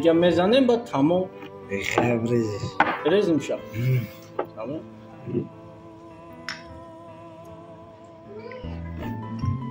میزنیم با تمام خیلی بریزش بریزیم شب تمام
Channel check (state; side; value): identical; both; correlation 1.00